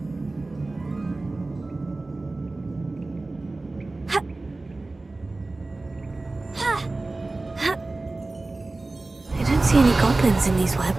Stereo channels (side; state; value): left; quieter; 3.2 dB